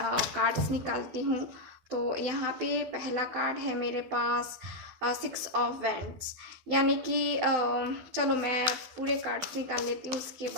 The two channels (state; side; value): late; left; 12 ms